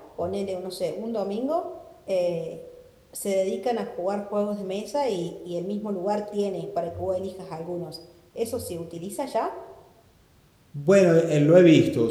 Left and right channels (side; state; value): both; identical; correlation 1.00